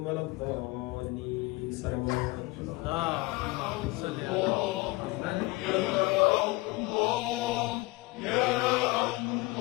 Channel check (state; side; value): quieter; right; 22.7 dB